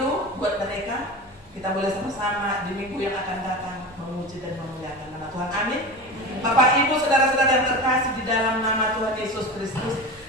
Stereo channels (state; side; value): normal; both; correlation 0.29